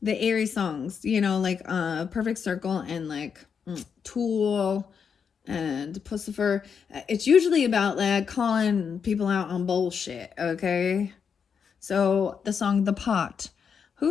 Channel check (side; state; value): right; quieter; 6.6 dB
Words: The Aries songs, like Perfect Circle and like Tool and Pussifer. It's usually about like calling people out on bullshit, okay? So the song The Pot.